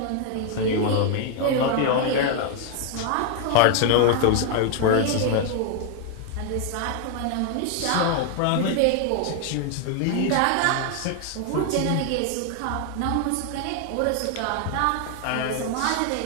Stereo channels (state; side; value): different; both; correlation 0.00